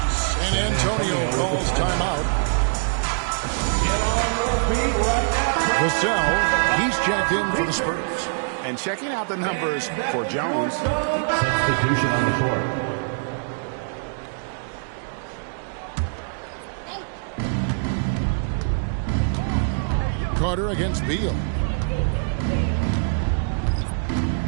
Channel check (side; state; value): left; silent; digital silence